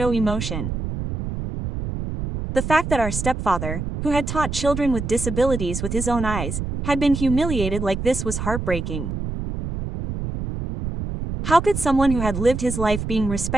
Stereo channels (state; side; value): noise; right; rumble, 5 dB below the sound